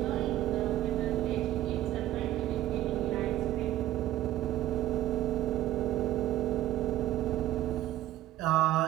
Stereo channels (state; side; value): quieter; left; 14.0 dB